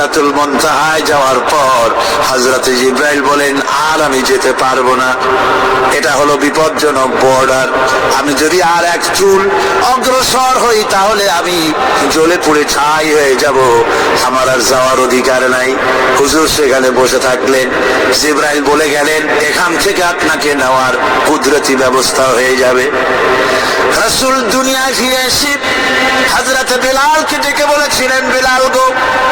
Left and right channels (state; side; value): identical; both; correlation 1.00